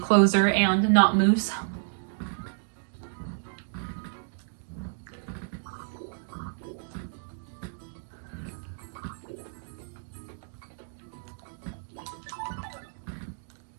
and not Moose.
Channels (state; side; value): silent; left; digital silence